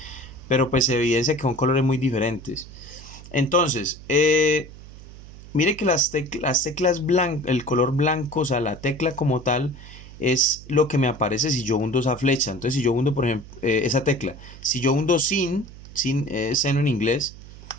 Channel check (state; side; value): noise; right; hum, 17 dB below the sound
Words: Pero pues se evidencia que son colores muy diferentes. Entonces, mire que las teclas blancas, el color blanco, o sea, la tecla como tal, es lo que me aparece si yo hundo esa flecha. Entonces, si yo hundo, por ejemplo, esa tecla, si yo hundo sin seno en inglés,